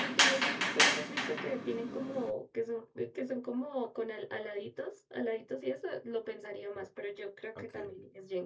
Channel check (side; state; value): both; identical; correlation 1.00